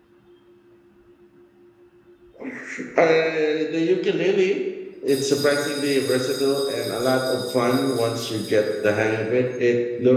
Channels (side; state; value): both; identical; correlation 1.00